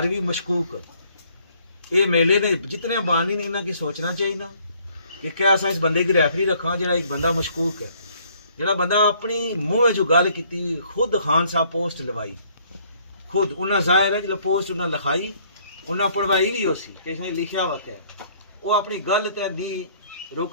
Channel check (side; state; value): both; inverted; correlation -0.63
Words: भी मशकूक। ये मेले ने जितने बानी ने इन्हों की सोचना चाहिए कि क्या असा इस बंदे की रैफरी रखा जो एक बंदा मशकूक है, जो बंदा अपनी मुँह जो गल की खुद खान साहब पोस्ट लवाई, खुद उन्हें जाहिर है जो पोस्ट उन्हें लिखाई, उन्हें पढ़वाई भी उसी इसने लिखा वा क्या वो अपनी गल तो नहीं